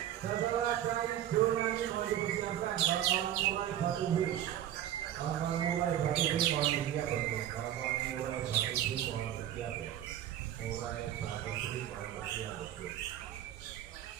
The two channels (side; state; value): left; quieter; 11.5 dB